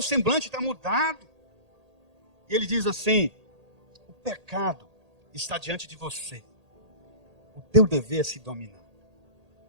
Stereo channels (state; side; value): late; left; 1.8 ms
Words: semblante está mudado. E ele diz assim: o pecado está diante de você, o teu dever é se dominar